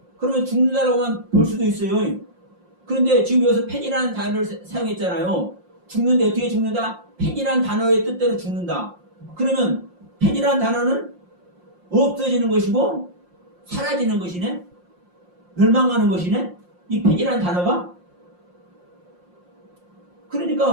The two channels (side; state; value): left; late; 5.6 ms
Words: 그러면 죽는다라고만 볼 수도 있어요. 그런데 지금 여기서 펜이라는 단어를 사용했잖아요. 죽는데 어떻게 죽는다? 펜이라는 단어의 뜻대로 죽는다. 그러면 펜이라는 단어는 없어지는 것이고 사라지는 것이네? 멸망하는 것이네? 이 펜이라는 단어가?